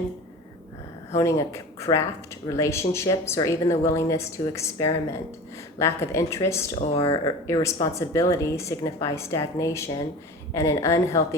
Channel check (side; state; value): both; normal; correlation 0.35